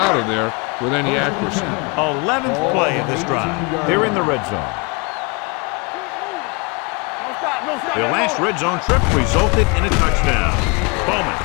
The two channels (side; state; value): right; quieter; 30.5 dB